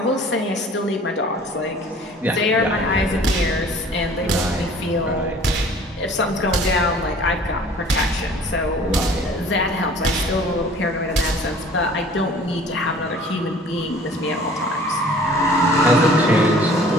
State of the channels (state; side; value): normal; both; correlation 0.49